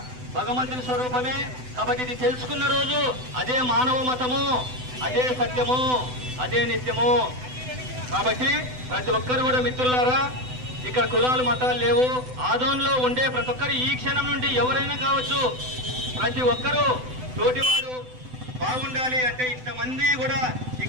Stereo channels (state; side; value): late; left; 7.9 ms